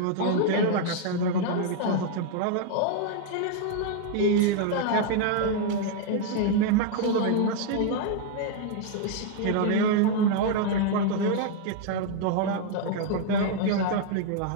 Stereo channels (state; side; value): different; both; correlation 0.00